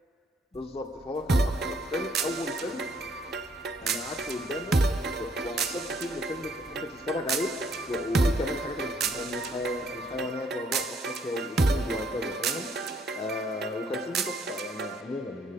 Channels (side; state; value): both; normal; correlation 0.67